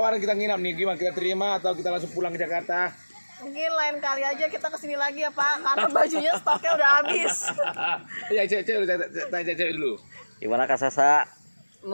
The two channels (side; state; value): both; inverted; correlation -1.00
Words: kita nginap nih, gimana kita terima atau kita langsung pulang ke Jakarta? Mungkin lain kali aja kita kesini lagi ya Pak, karena bajunya stoknya udah habis. Ya, tanya cewek dulu. Gimana Kak Sasa?